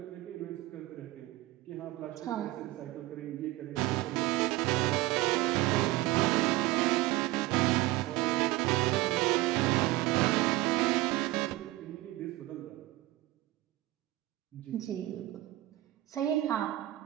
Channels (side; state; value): left; quieter; 17.9 dB